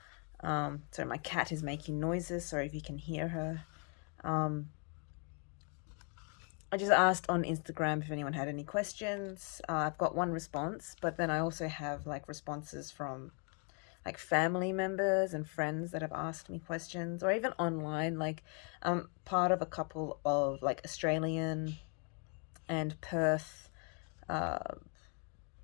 So my cat is making noises. Sorry if you can hear her. I just asked on Instagram if anyone had any questions. I've got one response, but then I also have like responses from like family members and friends that have asked me questions, or even online. Like I'm part of a couple of like Australian and Perth uh,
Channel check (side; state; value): right; quieter; 38.3 dB